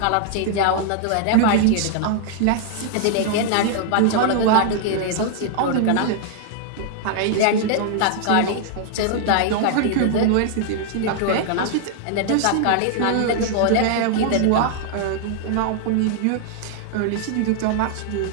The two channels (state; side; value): different; both; correlation -0.01